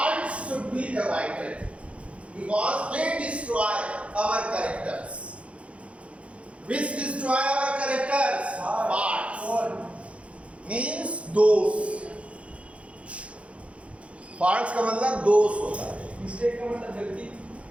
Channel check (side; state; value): left; late; 0.062 ms